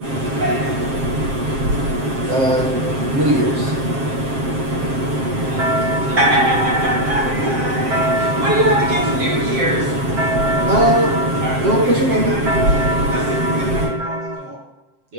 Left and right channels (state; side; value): late; left; 7.5 ms